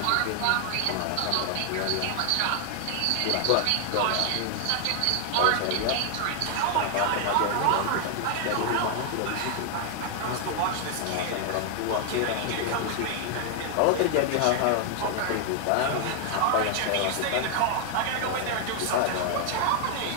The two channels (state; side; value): different; both; correlation 0.00